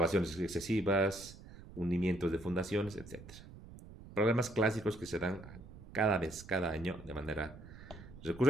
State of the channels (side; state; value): right; noise; rumble, 17 dB below the sound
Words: excesivas, hundimientos de fundaciones, etc. Problemas clásicos que se dan cada vez, cada año, de manera